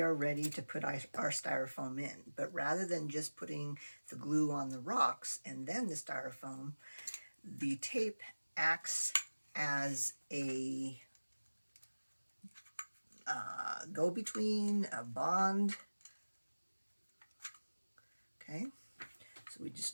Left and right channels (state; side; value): inverted; both; correlation -1.00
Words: are ready to put our styrofoam in, but rather than just putting the glue on the rocks and then the styrofoam, the tape acts as a go-between, a bond. Okay, so we just